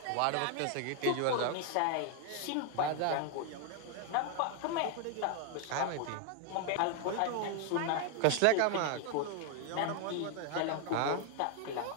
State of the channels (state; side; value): different; both; correlation 0.00